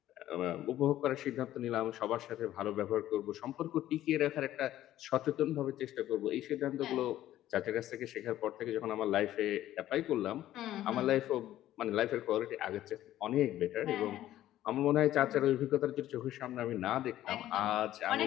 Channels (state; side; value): quieter; right; 13.4 dB